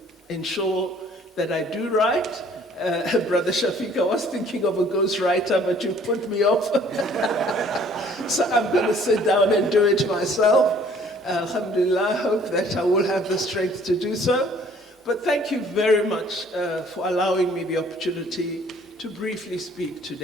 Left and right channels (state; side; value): normal; both; correlation 0.56